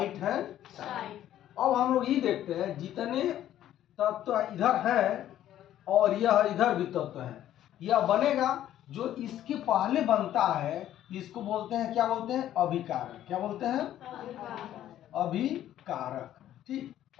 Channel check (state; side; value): quieter; right; 12.1 dB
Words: hand side. अब हम लोग ये देखते हैं जितने तत्व इधर हैं और यह इधर भी तत्व है, यह बनेगा जो इसके पहले बनता है, इसको बोलते हैं, क्या बोलते हैं? अभिकारक। क्या बोलते हैं? अभिकारक। ठीक,